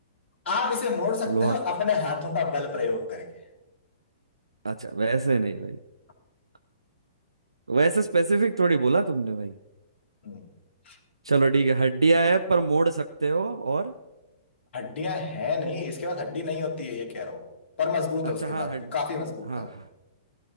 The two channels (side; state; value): both; inverted; correlation -0.75